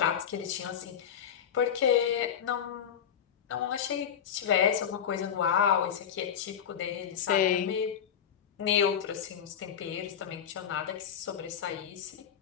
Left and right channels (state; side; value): quieter; right; 8.6 dB